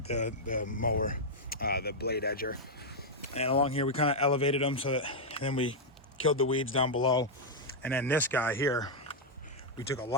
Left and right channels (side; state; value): both; normal; correlation -0.04